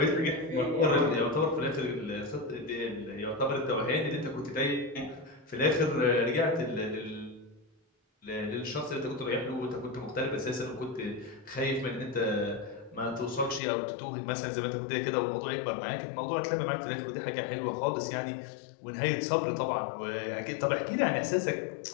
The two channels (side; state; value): right; drops out; at 13.6 s